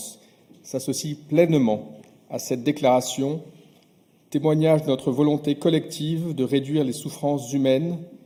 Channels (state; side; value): identical; both; correlation 1.00